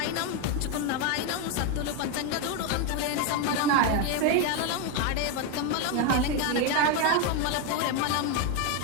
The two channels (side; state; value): both; different; correlation 0.02